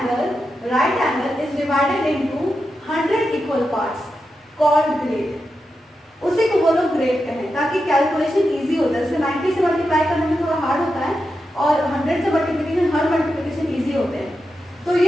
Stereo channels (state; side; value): normal; both; correlation 0.88